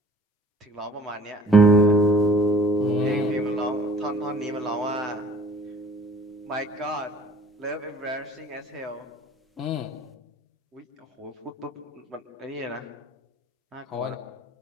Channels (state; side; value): normal; both; correlation 0.51